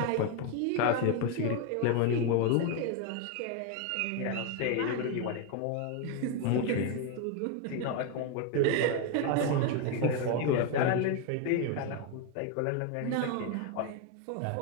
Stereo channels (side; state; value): both; different; correlation 0.02